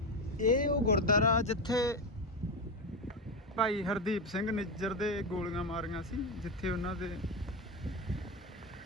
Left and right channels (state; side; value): normal; both; correlation 0.15